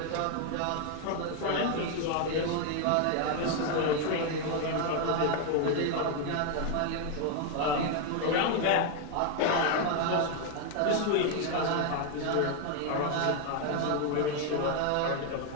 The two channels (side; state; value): both; different; correlation 0.01